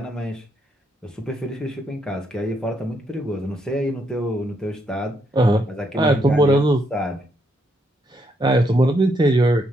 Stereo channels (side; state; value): both; normal; correlation 0.76